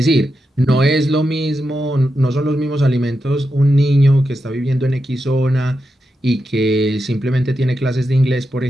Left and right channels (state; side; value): normal; both; correlation 0.87